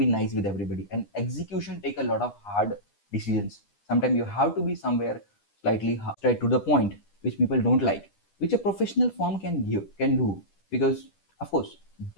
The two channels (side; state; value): right; late; 10 ms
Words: nice with everybody, and execution take a lot of hard decisions. Sometimes you have to be somewhere slightly straight to the point, which people don't like, which a professional firm can do, because of course